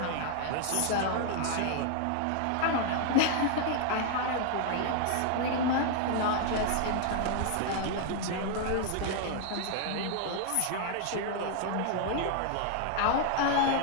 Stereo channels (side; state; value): both; different; correlation 0.00